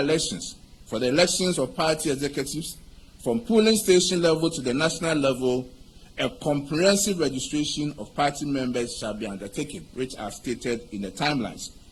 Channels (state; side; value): identical; both; correlation 1.00